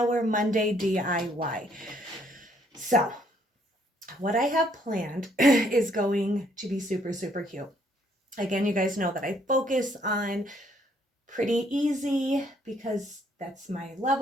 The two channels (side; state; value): both; normal; correlation 0.67